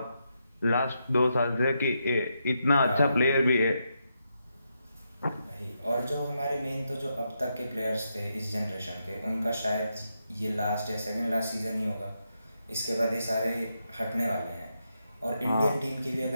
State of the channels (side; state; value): both; inverted; correlation -0.83